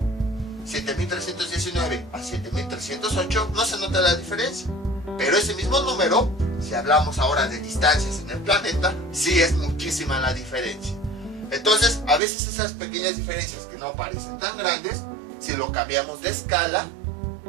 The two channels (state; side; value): drops out; left; at 12.2 s